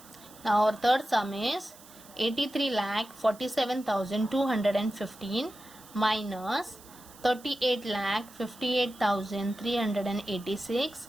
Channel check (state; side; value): noise; right; hiss, 21 dB below the sound